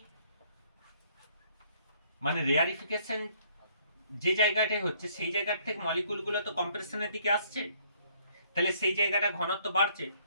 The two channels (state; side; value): inverted; both; correlation -0.64